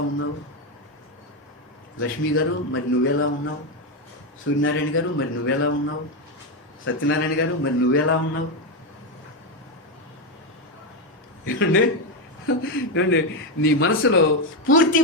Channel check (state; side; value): normal; both; correlation 0.08